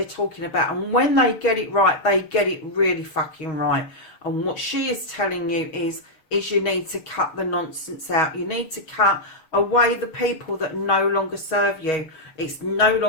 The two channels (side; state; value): right; late; 6.3 ms